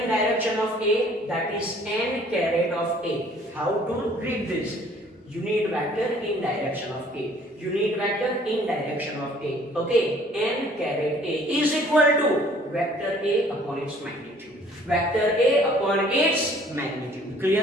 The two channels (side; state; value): both; normal; correlation 0.56